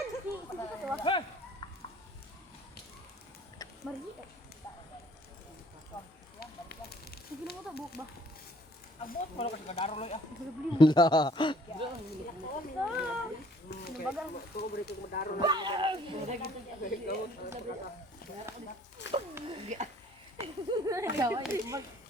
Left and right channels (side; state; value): both; normal; correlation 0.57